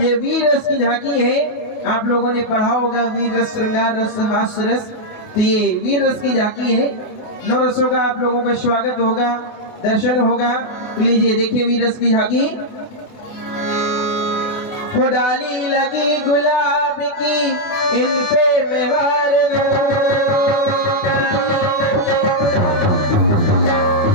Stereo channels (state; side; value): late; right; 28 ms